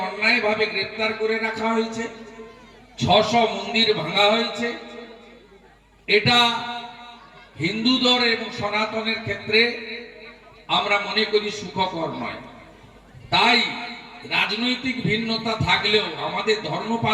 অন্যায়ভাবে গ্রেপ্তার করে রাখা হয়েছে, 600 মন্দির ভাঙা হয়েছে। এটা হিন্দুদের এবং সনাতনের ক্ষেত্রে আমরা মনে করি সুখকর নয়। তাই রাজনৈতিক ভিন্নতা থাকলেও আমাদের ধর্ম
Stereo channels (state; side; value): identical; both; correlation 1.00